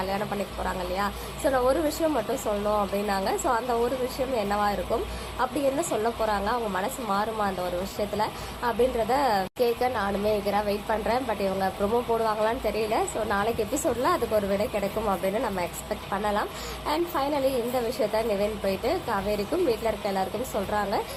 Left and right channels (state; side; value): identical; both; correlation 1.00